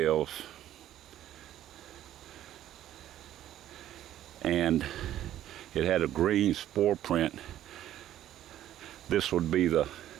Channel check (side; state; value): left; quieter; 12.4 dB